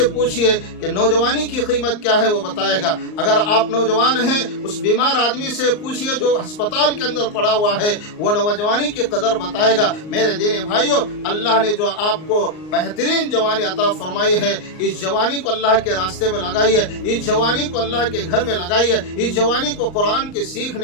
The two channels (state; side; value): late; right; 38 ms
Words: پوچھئے کہ نوجوانی کی قیمت کیا ہے، وہ بتائے گا۔ اگر آپ نوجوان ہیں، اس بیمار آدمی سے پوچھئے جو ہسپتال کے اندر پڑا ہوا ہے، وہ نوجوانی کی قدر بتائے گا۔ میرے دینی بھائیوں، اللہ نے جو آپ کو بہترین جوانی عطا فرمائی ہے، اس جوانی کو اللہ کے راستے میں لگائیے، اس جوانی کو اللہ کے گھر میں لگائیے، اس جوانی کو قرآن کے